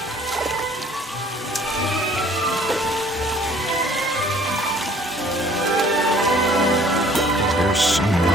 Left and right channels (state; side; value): normal; both; correlation 0.55